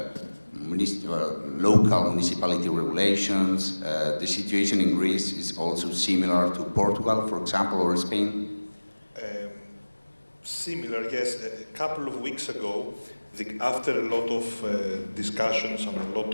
local municipality regulations. The situation in Greece is also similar to Portugal, for example, or Spain? Similar, yes. A couple of weeks ago, after a lot of discussions and a lot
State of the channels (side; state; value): both; inverted; correlation -1.00